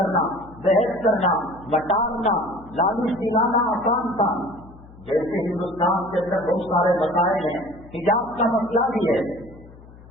बहस करना, मटारना, लालच दिलाना आसान था। जैसे हिंदुस्तान के अंदर बहुत सारे मसाइल हैं, हिजाब का मसला भी है,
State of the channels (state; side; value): noise; left; hum, 21 dB below the sound